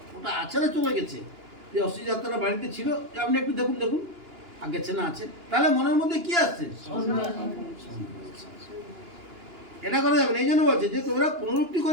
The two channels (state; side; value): late; left; 2.9 ms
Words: ওটা আছে না চলে গেছে। যে অস্থি যাত্রা বাড়িতে ছিল, আপনি একটু দেখুন দেখুন আর গেছে না আছে, তাহলে মনের মধ্যে কি আসছে? এটা করা যাবে না। এই জন্য বলছে যে তোমরা পুনরুক্তি